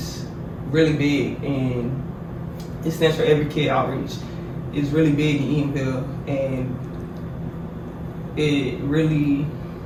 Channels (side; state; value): both; identical; correlation 1.00